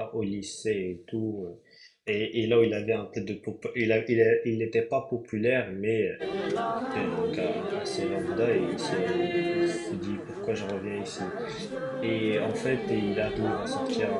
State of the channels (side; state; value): both; identical; correlation 1.00